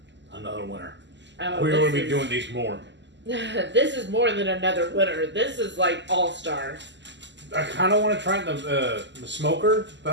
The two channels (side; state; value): left; late; 0.52 ms